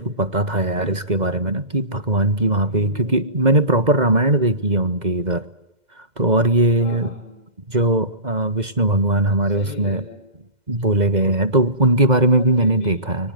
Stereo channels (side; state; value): left; late; 2.0 ms